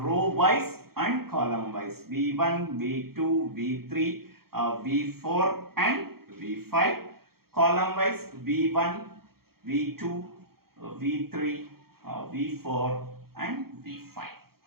row wise and column wise. V1, V2, V3, V4 and V5. Column wise V1, V2, V3, V4 and V5.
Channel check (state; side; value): late; left; 0.94 ms